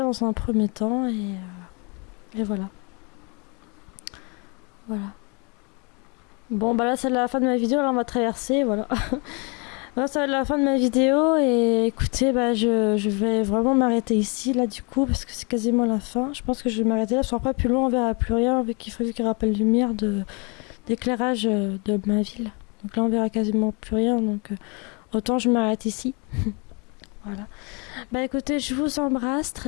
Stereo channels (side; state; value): right; quieter; 32.2 dB